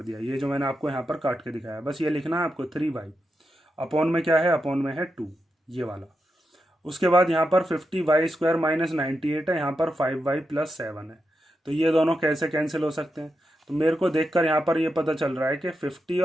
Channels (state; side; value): normal; both; correlation 0.87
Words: दिया। ये जो मैंने आपको यहाँ पर काट के दिखाया, बस ये लिखना है आपको 3y। अपॉन में क्या है, अपॉन में है 2, ये वाला। उसके बाद यहाँ पर 50y² - 98 है, यहाँ पर 5y + 7 है। तो ये दोनों कैसे कैंसिल हो सकते हैं, तो मेरे को देखकर यहाँ पर ये पता चल रहा है कि 50